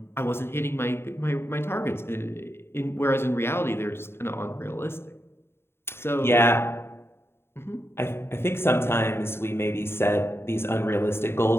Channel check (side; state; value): right; late; 0.11 ms